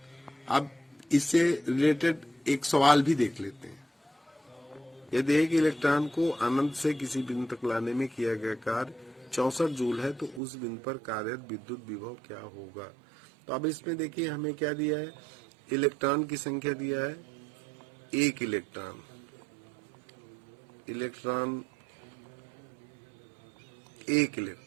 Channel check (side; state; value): left; drops out; at 10.4 s